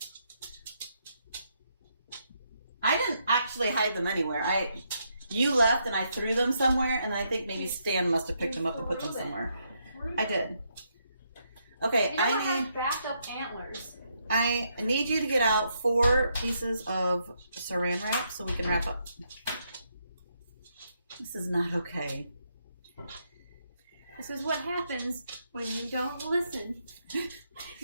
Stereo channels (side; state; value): both; inverted; correlation -0.77